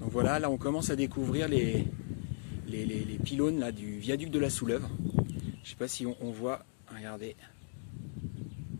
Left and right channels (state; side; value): silent; right; digital silence